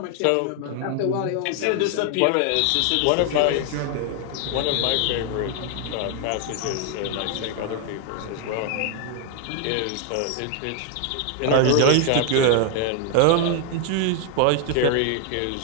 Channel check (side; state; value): both; different; correlation 0.00